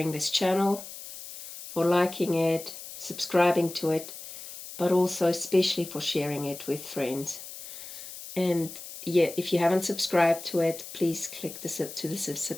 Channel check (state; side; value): noise; left; hiss, 12 dB below the sound